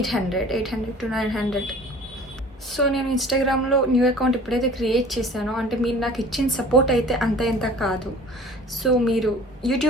to 900. సో నేను ఇన్స్టాగ్రామ్లో న్యూ అకౌంట్ ఎప్పుడైతే క్రియేట్ చేశానో, అంటే మీరు నాకు ఇచ్చిన సపోర్ట్ అయితే అంత ఎంత కాదు. సో మీరు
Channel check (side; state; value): both; normal; correlation 0.46